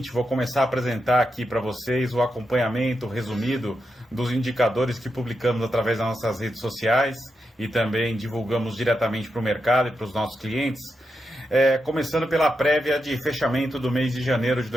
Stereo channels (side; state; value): both; normal; correlation 0.86